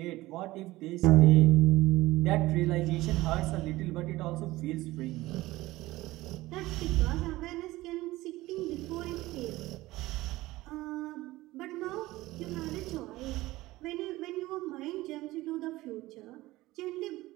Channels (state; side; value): quieter; left; 18.3 dB